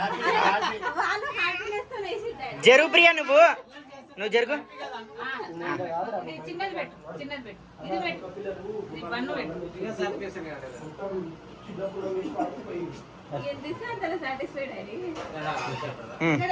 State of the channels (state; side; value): identical; both; correlation 1.00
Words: జరుగు ప్రియా నువ్వు జరుగు. చిన్నది పెట్టు చిన్నది పెట్టు ఇది పెట్టు ఇది పన్ను పెట్టు